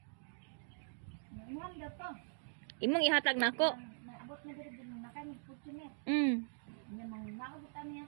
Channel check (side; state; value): left; silent; digital silence